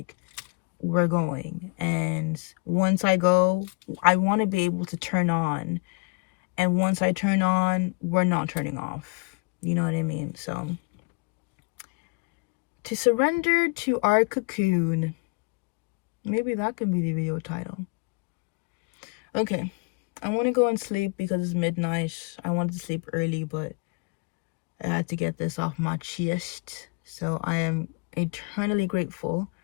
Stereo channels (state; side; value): quieter; right; 30.8 dB